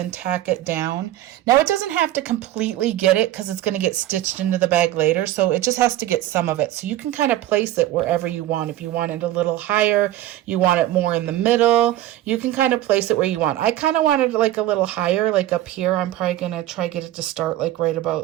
tack it down. Now it doesn't have to completely get it because it's gonna get stitched into the bag later. So it just has to get some of it. So you can kind of place it wherever you want. If you want it a little higher, you want it more in the middle, you can kind of place it where you want. I kind of wanted it like a little higher, like up here. I'm probably gonna try get it to start like right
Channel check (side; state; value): left; quieter; 14.0 dB